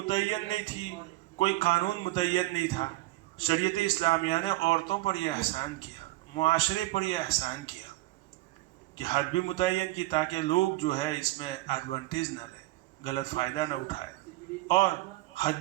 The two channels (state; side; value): quieter; left; 18.6 dB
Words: نہیں تھی، کوئی قانون متعین نہیں تھا، شریعت اسلامیہ نے عورتوں پر یہ احسان کیا، معاشرے پر یہ احسان کیا کہ حد بھی متعین کی تاکہ لوگ جو ہے اس میں ایڈوانٹیج نہ لیں، غلط فائدہ نہ اٹھائے، اور حد